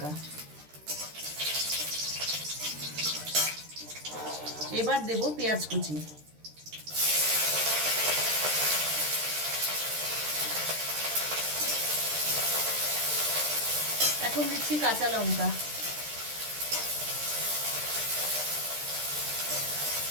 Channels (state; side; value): late; left; 13 ms